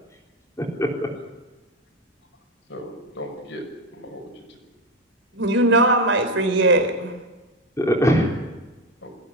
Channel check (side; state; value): both; normal; correlation 0.15